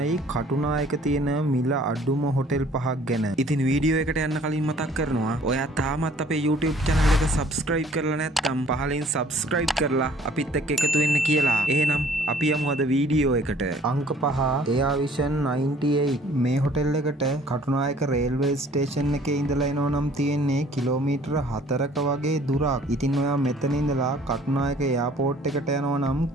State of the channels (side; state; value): both; normal; correlation 0.55